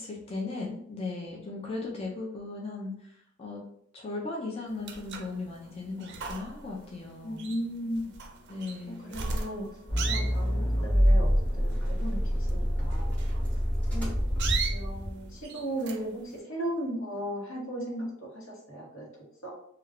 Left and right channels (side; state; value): both; normal; correlation 0.85